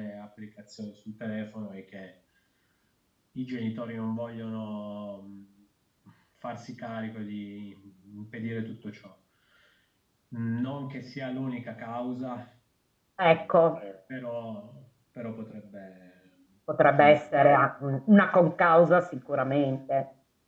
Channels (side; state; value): both; identical; correlation 1.00